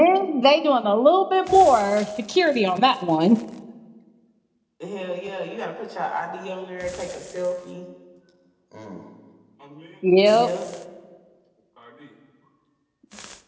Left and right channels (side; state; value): both; identical; correlation 1.00